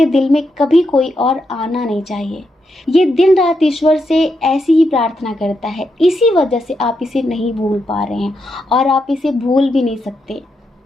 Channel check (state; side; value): normal; both; correlation 0.83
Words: दिल में कभी कोई और आना नहीं चाहिए। ये दिन रात ईश्वर से ऐसी ही प्रार्थना करता है। इसी वजह से आप इसे नहीं भूल पा रहे हैं, और आप इसे भूल भी नहीं सकते।